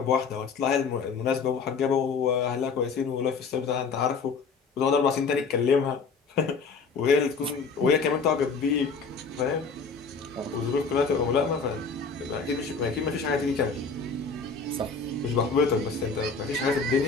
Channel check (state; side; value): quieter; right; 4.9 dB